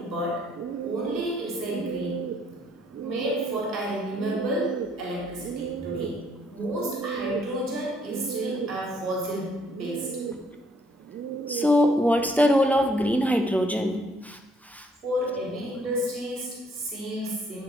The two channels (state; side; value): normal; both; correlation 0.66